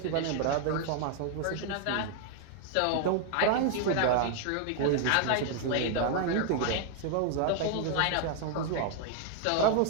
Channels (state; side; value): different; both; correlation 0.00